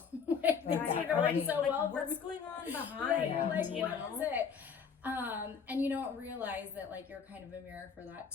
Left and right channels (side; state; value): right; quieter; 6.4 dB